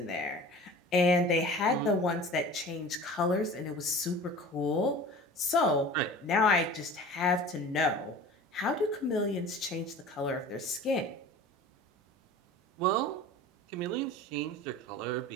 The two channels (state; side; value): normal; both; correlation 0.40